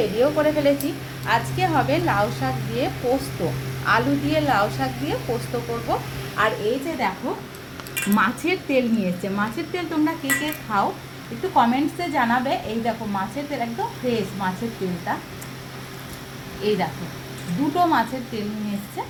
করে ফেলেছি। আজকে হবে লাউ শাক দিয়ে পোস্ত, আলু দিয়ে লাউ শাক দিয়ে পোস্ত করব। আর এই যে দেখো মাছের তেল নিয়ে এসছে। মাছের তেল তোমরা কে কে খাও একটু কমেন্টসে জানাবে। এই দেখো মাছের তেল, একদম ফ্রেশ মাছের তেলটা। এই দেখো দুটো মাছের তেল নিয়ে এসছে,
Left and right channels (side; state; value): both; identical; correlation 1.00